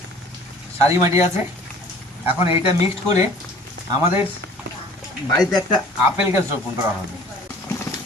সারি মাটি আছে, এখন এইটা মিক্সড করে আমাদের বাড়িতে একটা আপেল গাছ রোপণ করা হবে।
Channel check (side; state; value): both; normal; correlation 0.50